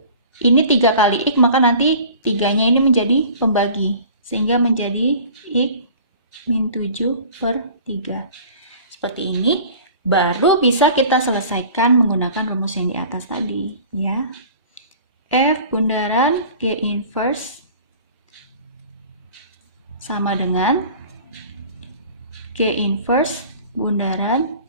Ini 3 kali X, maka nanti 3-nya ini menjadi pembagi. Sehingga menjadi X min 7 per 3. Seperti ini. Baru bisa kita selesaikan menggunakan rumus yang di atas tadi, ya. F bundaran G inverse sama dengan G inverse bundaran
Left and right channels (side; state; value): both; inverted; correlation -0.45